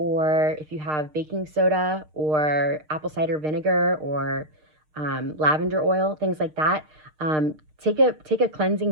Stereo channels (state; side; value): late; left; 6.5 ms